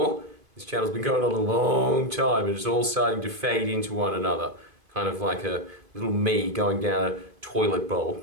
This channel's been going on a long time and it's all starting to fade into one another. Kind of like a little me going down a toilet bowl.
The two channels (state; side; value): late; left; 2.5 ms